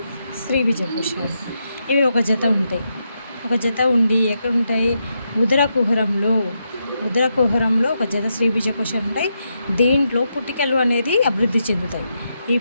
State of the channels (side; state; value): both; inverted; correlation -0.83